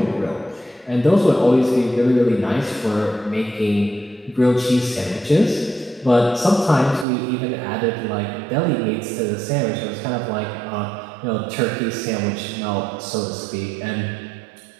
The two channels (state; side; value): drops out; left; at 7.1 s